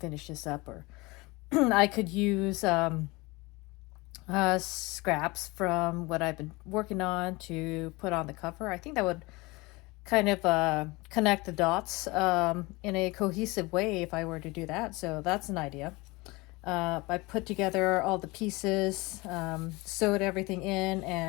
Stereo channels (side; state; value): right; quieter; 23.6 dB